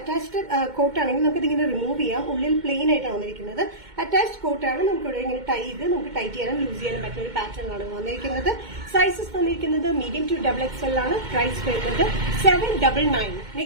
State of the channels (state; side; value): late; left; 2.2 ms